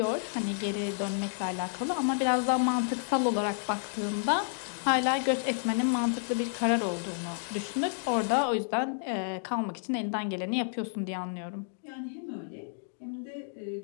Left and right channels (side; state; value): right; silent; digital silence